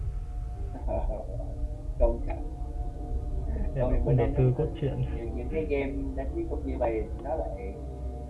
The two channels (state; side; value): identical; both; correlation 1.00